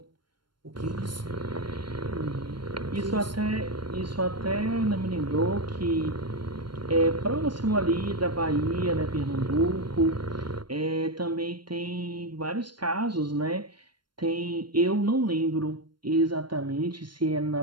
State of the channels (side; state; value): left; late; 0.72 ms